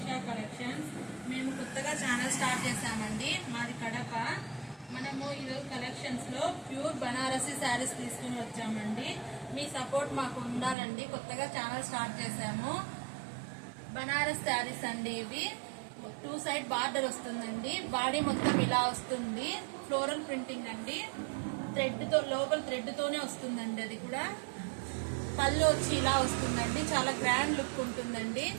collections. మేము కొత్తగా channel start చేసామండి. మాది కడప. మనము ఈరోజు కలెక్షన్స్ లో ప్యూర్ బనారసి శారీస్ తీసుకుని వచ్చామండి. మీ సపోర్ట్ మాకు ఉండాలండి. కొత్తగా ఛానల్ స్టార్ట్ చేసాము. బనారస్ శారీస్ అండి. ఇవి 2 సైడ్ బార్డర్ వస్తుందండి. బాడీ మొత్తం ఇలా వస్తుంది. ఫ్లోరల్ ప్రింటింగ్ అండి. థ్రెడ్ తో లోపల థ్రెడ్ తోనే వస్తుందండి. అది కూడా పళ్ళు వచ్చి ఇలా వస్తుందండి. చాలా గ్రాండ్ లుక్ ఉంటుందండి.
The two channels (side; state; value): left; drops out; at 10.8 s